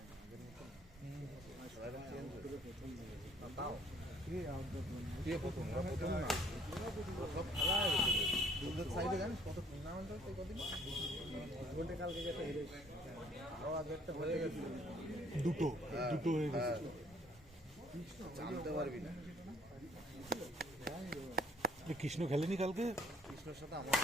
সাইডে জানিস কত টুর্নামেন্ট হচ্ছে কদিন কালকে যেটা হেরে আরো আগে একটা হয়ে গেছে দুটো হয়ে গেছে জানতে পারবি না কৃষ্ণ খেলেনি কালকে কৃষ্ণের সাথে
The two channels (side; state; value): both; normal; correlation 0.61